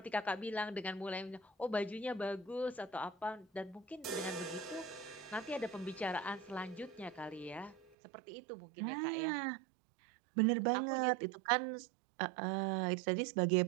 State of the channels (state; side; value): drops out; left; at 8.0 s